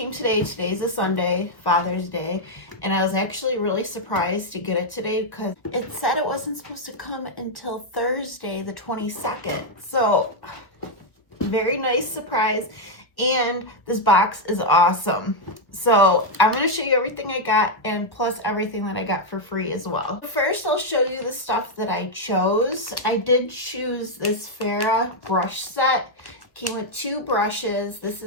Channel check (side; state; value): right; late; 1.2 ms